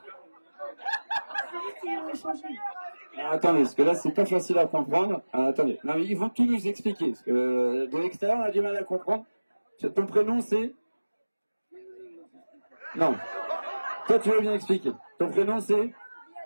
Attendez, parce que là c'est pas facile à comprendre. Attendez, non, mais ils vont tout nous expliquer. Parce que de l'extérieur on a du mal à comprendre. Ton prénom c'est... Non. Toi tu veux bien expliquer. Ton prénom c'est...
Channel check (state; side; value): inverted; both; correlation -1.00